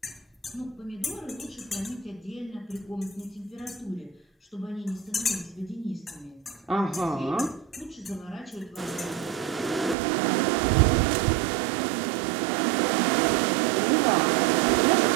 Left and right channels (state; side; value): drops out; left; at 10.0 s